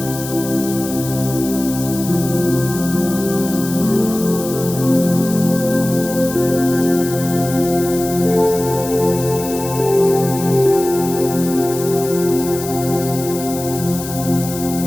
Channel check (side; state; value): left; noise; hiss, 10 dB below the sound